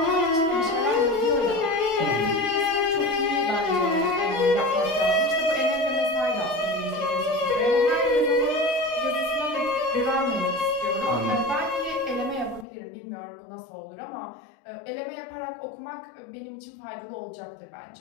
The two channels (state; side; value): drops out; right; at 12.7 s